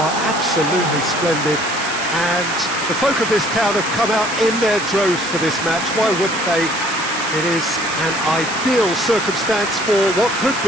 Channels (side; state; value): right; noise; hiss, 8 dB below the sound